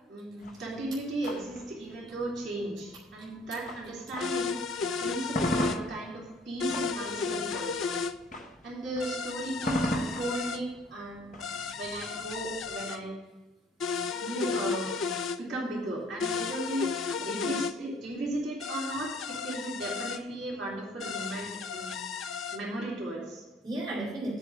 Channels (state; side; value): normal; both; correlation 0.56